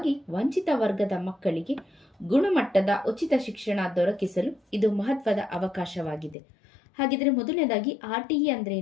ವಂಚಿತ ವರ್ಗದ ಮಕ್ಕಳಿಗೆ ಗುಣಮಟ್ಟದ ಉಚಿತ ಶಿಕ್ಷಣ ದೊರಕಿಸಲು ಇದು ಮಹತ್ವದ ಅವಕಾಶವಾಗಿದೆ. ಹಾಗಿದ್ರೆ ಮೊದಲನೇದಾಗಿ RTE ಅಂದ್ರೆ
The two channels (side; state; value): right; drops out; at 6.4 s